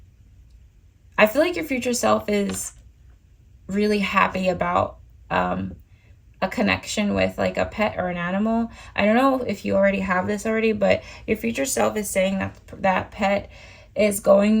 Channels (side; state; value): both; identical; correlation 1.00